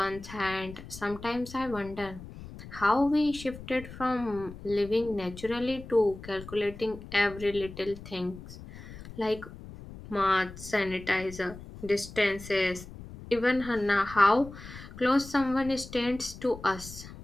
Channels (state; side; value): noise; left; rumble, 14 dB below the sound